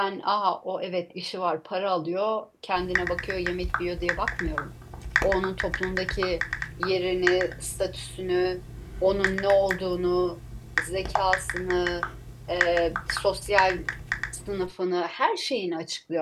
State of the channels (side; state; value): both; identical; correlation 1.00